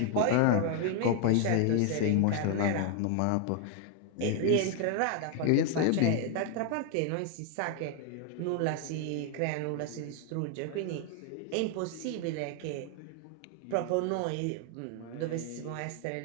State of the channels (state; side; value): different; both; correlation 0.00